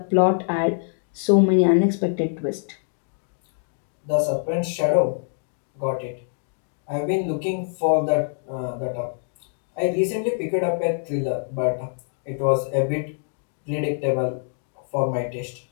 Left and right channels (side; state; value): right; silent; digital silence